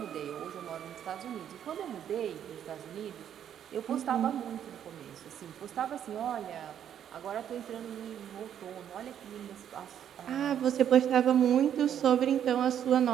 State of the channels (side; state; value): left; quieter; 9.6 dB